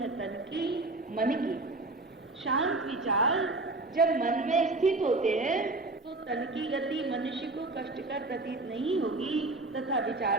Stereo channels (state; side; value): quieter; left; 3.0 dB